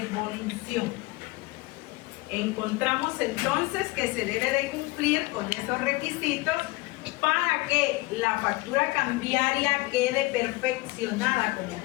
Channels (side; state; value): right; quieter; 21.8 dB